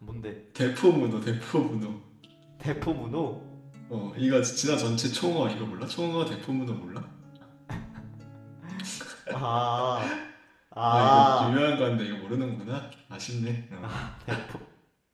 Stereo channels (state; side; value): identical; both; correlation 1.00